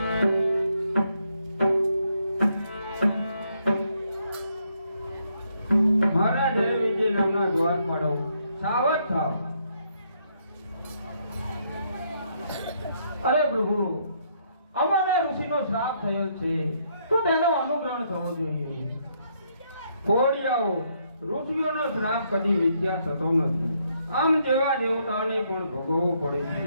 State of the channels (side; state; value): both; inverted; correlation -0.73